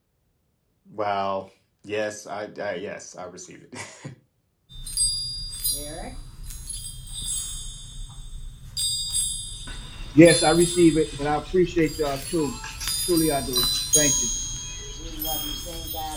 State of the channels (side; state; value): both; identical; correlation 1.00